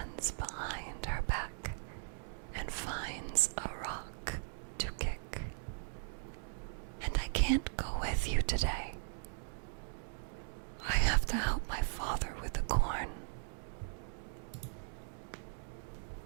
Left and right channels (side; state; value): left; silent; digital silence